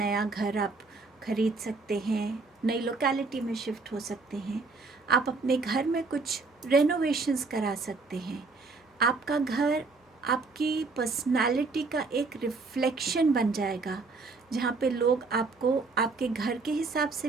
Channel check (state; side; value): quieter; left; 3.9 dB